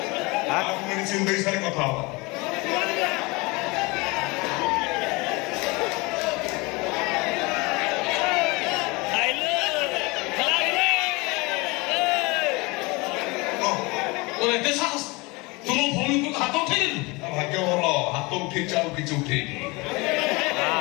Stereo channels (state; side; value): quieter; right; 25.3 dB